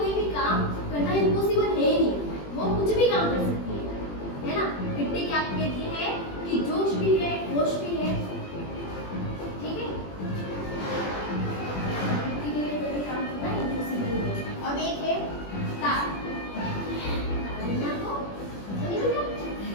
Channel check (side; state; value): right; late; 21 ms